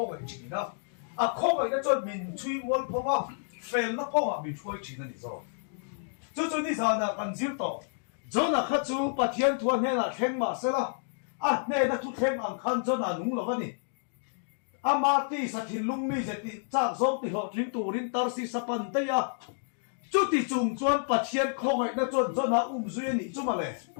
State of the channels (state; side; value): silent; right; digital silence